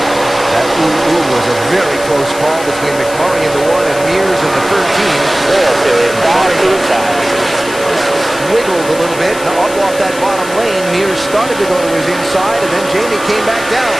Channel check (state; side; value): noise; left; hiss, 13 dB below the sound